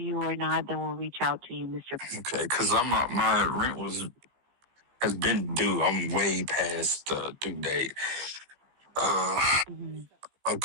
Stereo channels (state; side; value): late; left; 15 ms